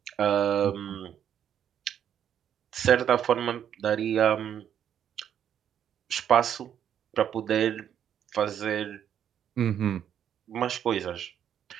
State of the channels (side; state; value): left; quieter; 9.3 dB